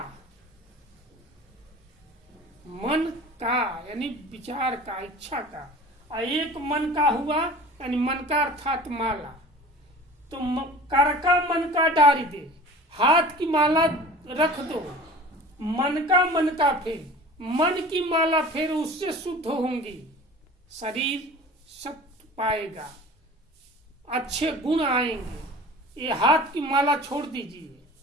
मन का यानी विचार का, इच्छा का। और एक मन का हुआ यानी मन का अर्थात माला। तो कर का मन का डारी दे, हाथ की माला रख दो, मन का मन का फिर। मन की माला फिर, उससे शुद्ध होंगी, शरीर सत्य पाएगा, अच्छे गुण आएंगे। ये हाथ की माला छोड़ दीजिए,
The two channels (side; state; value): both; normal; correlation 0.41